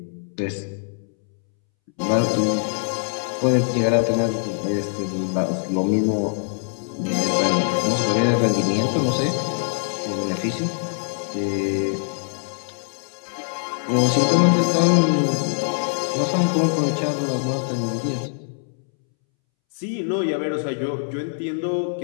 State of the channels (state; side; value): silent; right; 64 dB below the other